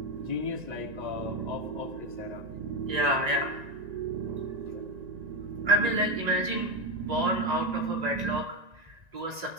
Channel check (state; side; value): late; left; 1.9 ms